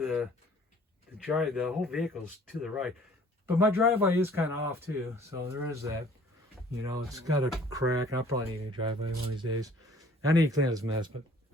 whole vehicle's to the right. But my driveway is kind of off too, so there is that. You know, it's got a crack. I'll probably need a driveway one of these days. I need to clean this mess, but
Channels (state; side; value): normal; both; correlation 0.54